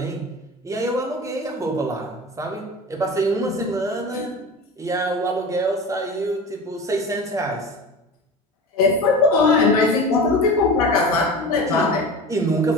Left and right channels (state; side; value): normal; both; correlation 0.32